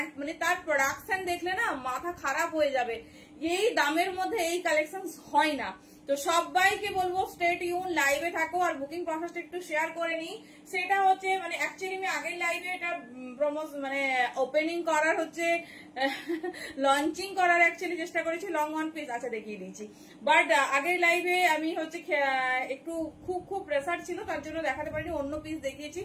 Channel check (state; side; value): identical; both; correlation 1.00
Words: মানে তার প্রোডাকশন দেখলে না মাথা খারাপ হয়ে যাবে। এই দামের মধ্যে এই কালেকশন হয় না। তো সবাইকে বলবো স্টে টিউন, লাইভে থাকো। আর বুকিং প্রসেসটা একটু শেয়ার করে নিই। সেটা হচ্ছে মানে অ্যাকচুয়ালি আমি আগের লাইভে এটা মানে ওপেনিং করার হচ্ছে লঞ্চিং করার অ্যাকচুয়ালি চেষ্টা করেছি, লং ওয়ান পিস আচ্ছা দেখিয়ে দিয়েছি। বাট আগের লাইভে আমি হচ্ছে একটু খুব প্রেসার ছিল, তার জন্য দেখাতে পারিনি, অন্য পিস দেখিয়েছি।